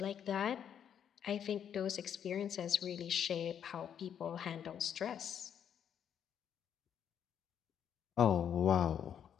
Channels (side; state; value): right; quieter; 8.8 dB